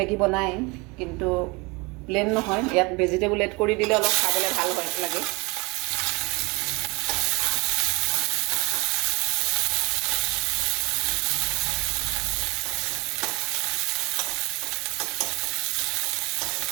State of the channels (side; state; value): left; quieter; 26.6 dB